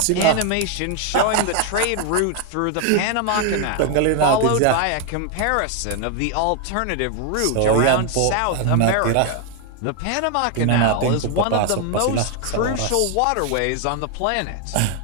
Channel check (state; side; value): different; both; correlation 0.01